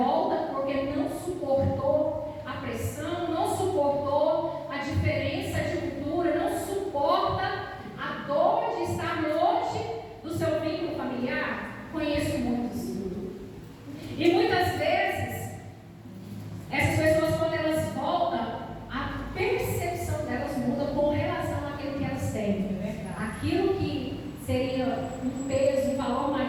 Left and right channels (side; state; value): both; identical; correlation 1.00